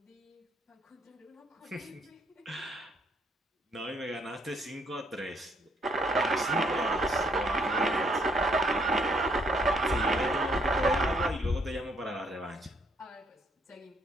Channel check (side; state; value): both; normal; correlation 0.69